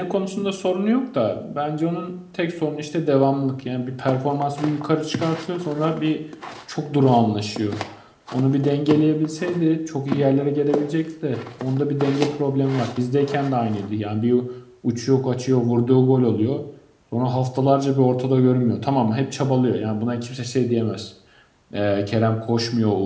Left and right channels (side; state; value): both; identical; correlation 1.00